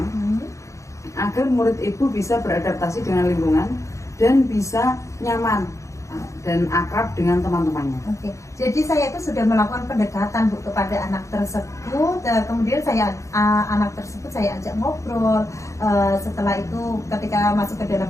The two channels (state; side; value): late; right; 0.15 ms